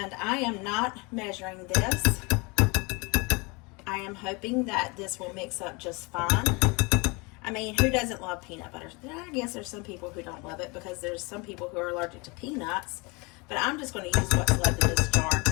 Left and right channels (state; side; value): quieter; right; 28.2 dB